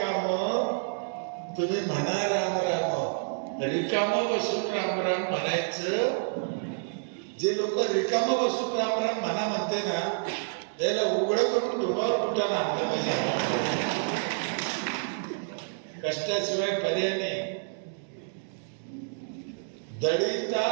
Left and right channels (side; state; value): left; silent; digital silence